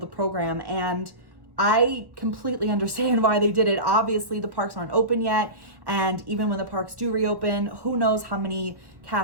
the program. And I completely understand why they did it. Obviously, the parks aren't open yet. And even when the parks do reopen, who knows how many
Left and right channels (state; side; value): late; left; 1.1 ms